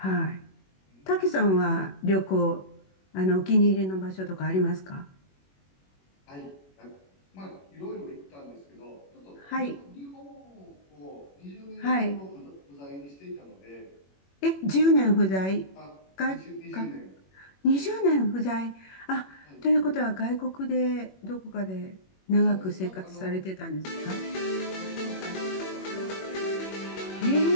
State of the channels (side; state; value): right; late; 21 ms